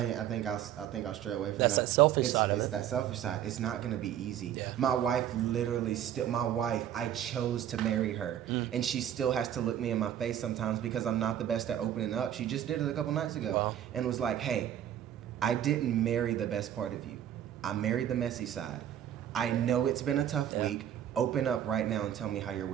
I think I'll stray away from That's that selfish side of It's it. that selfish side. It's not gonna be easy. Yeah. My wife literally I chose to marry her, and she still has to look me in my face sometimes because I'm not the best at opening up. She just did it a couple nights ago, Wow. and was like, "Hey, I didn't marry the best part of you. I married the messy side. I know it's been a tough week. Open up right now and tell me how your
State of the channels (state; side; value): quieter; left; 10.6 dB